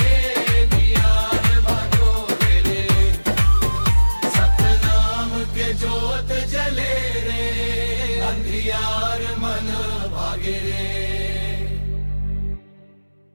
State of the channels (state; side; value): inverted; both; correlation -1.00